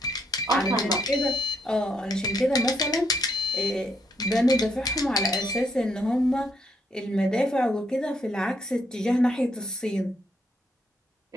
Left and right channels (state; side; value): normal; both; correlation 0.75